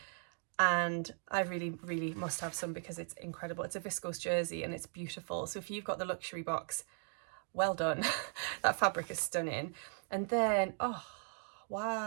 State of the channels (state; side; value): silent; left; 53 dB below the other